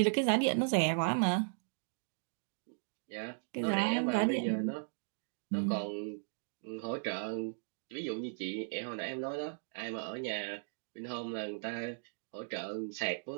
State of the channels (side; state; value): left; silent; digital silence